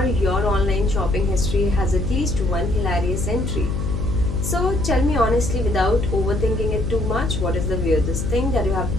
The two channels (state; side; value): noise; left; hum, 2 dB below the sound